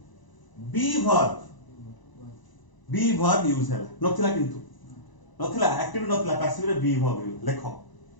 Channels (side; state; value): right; late; 1.0 ms